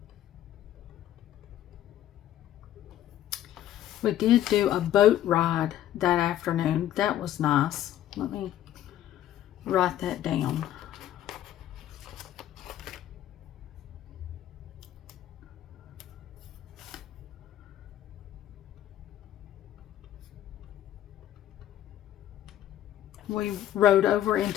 We did do a boat ride that afternoon. That was nice. Let me write that down. We rode over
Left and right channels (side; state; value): right; quieter; 12.2 dB